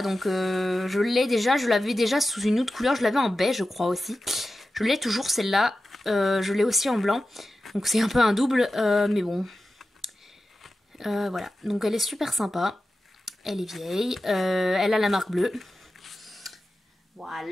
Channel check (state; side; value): normal; both; correlation 0.93